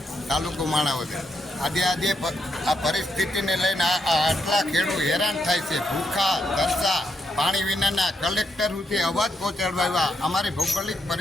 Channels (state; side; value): normal; both; correlation 0.79